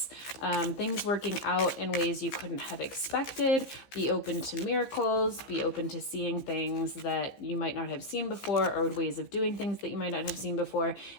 things working out in ways you couldn't have expected. Be open to miracles, be open to seeing things that you might not have seen before, or ways of doing things that you might not have seen before.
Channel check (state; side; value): late; right; 15 ms